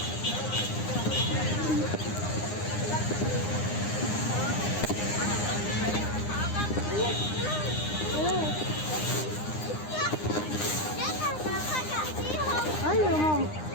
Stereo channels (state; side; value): late; right; 9.8 ms